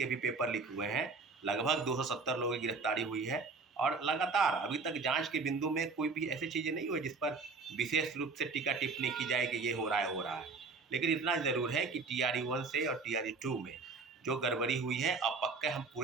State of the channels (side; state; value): left; quieter; 4.3 dB